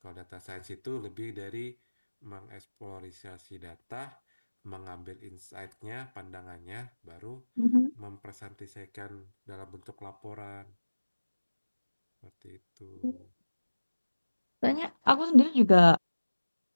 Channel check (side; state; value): both; inverted; correlation -1.00